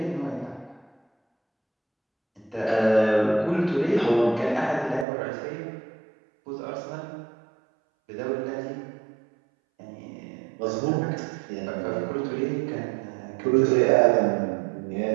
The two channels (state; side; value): drops out; left; at 5.1 s